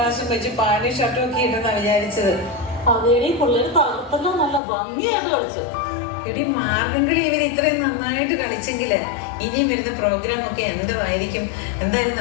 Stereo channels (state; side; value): drops out; right; at 4.6 s